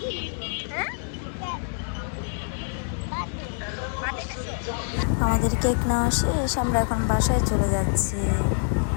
হ্যাঁ, আমাদের কেক নেওয়া শেষ, আমরা এখন বাসায় চলে যাচ্ছি।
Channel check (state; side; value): silent; right; digital silence